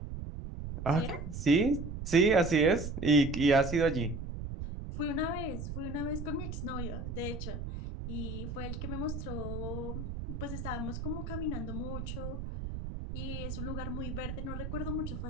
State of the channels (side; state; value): right; noise; rumble, 6 dB below the sound